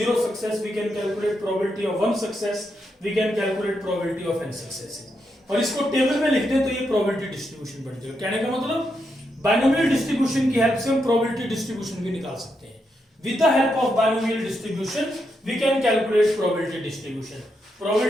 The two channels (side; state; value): both; normal; correlation 0.82